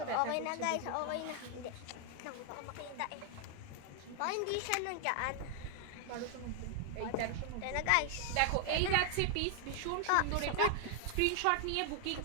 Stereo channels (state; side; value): different; both; correlation 0.00